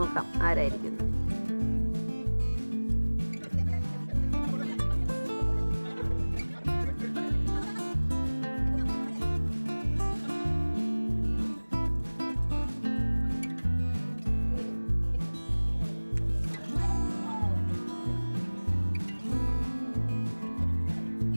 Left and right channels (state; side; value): inverted; both; correlation -1.00